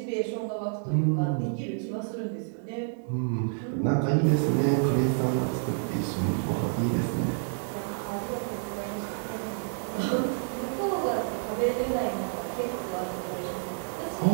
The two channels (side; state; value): left; silent; 59 dB below the other